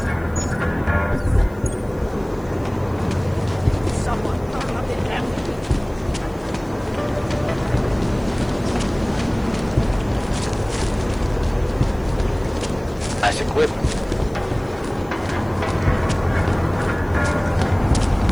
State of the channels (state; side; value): noise; left; hiss, 28 dB below the sound